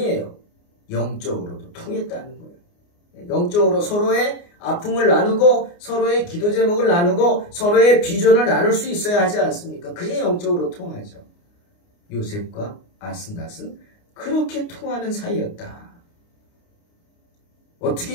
영적으로도 통했다는 거예요. 영적으로 서로의 아픔을 나누고 서로의 기도 제목을 나누고 서로의 비전을 나눌 수 있어야 하지 않습니까? 그게 영적으로 통하죠. 요셉과 아스낫은 그렇게 통하는 사이였다.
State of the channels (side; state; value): right; late; 29 ms